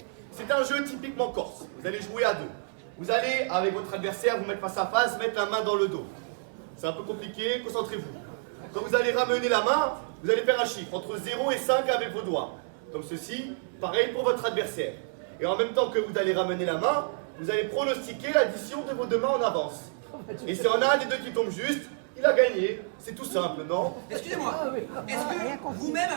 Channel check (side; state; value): left; silent; digital silence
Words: C'est un jeu typiquement corse. Vous allez jouer à deux. Vous allez, avec votre adversaire, vous mettre face à face, mettre la main dans le dos. C'est un peu compliqué, concentrez-vous. Quand vous allez ramener la main, vous allez faire un chiffre entre 0 et 5 avec vos doigts. Comme ceci, pareil pour votre adversaire. Et en même temps que vous allez ramener la main, vous allez pronostiquer l'addition de vos deux mains en avance. Et si on a un des deux qui tombe juste, il a gagné. C'est tout simple, non? Excusez-moi, est-ce que vous-même